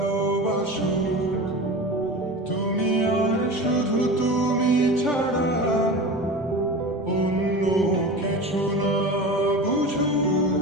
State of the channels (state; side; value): normal; both; correlation 0.30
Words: তুমি আর শুধু তুমি ছাড়া অন্য কিছু না